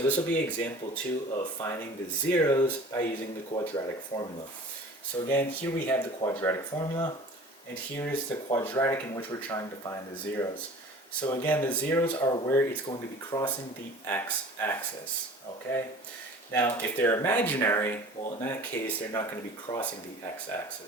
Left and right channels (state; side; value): normal; both; correlation 0.43